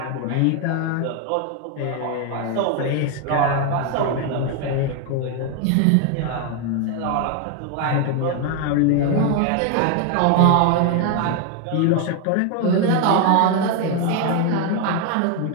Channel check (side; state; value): both; different; correlation 0.01